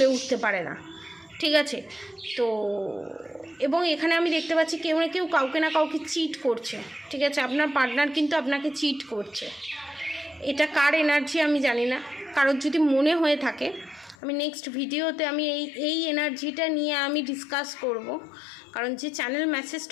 উঠতে পারে না। ঠিক আছে, তো এবং এখানে আমি দেখতে পাচ্ছি কেউ না কেউ কাউকে না কাউকে চিট করছে। ঠিক আছে, আপনার পার্টনার কিন্তু আপনাকে চিট করছে। এটা কার এনার্জি আমি জানি না, কারোর যদি মনে হয়ে থাকে আমি নেক্সট ভিডিওতে আমি এই এনার্জিটা নিয়ে আমি ডিসকাস করব, কারণ যে চ্যানেল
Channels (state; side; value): drops out; right; at 14.2 s